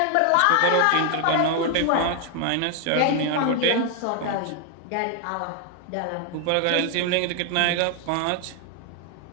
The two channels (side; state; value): both; different; correlation 0.00